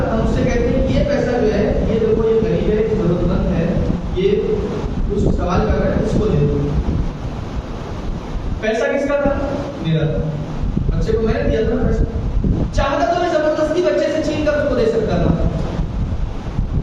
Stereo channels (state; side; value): identical; both; correlation 1.00